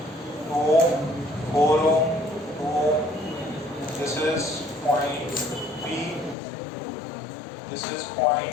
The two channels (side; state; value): right; drops out; at 6.4 s